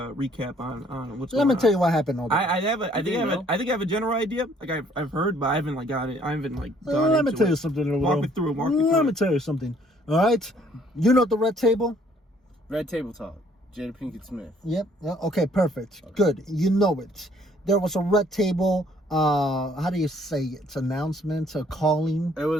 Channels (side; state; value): both; normal; correlation 0.62